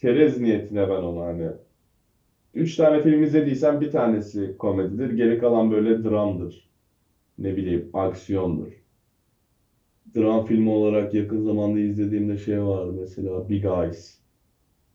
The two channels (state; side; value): identical; both; correlation 1.00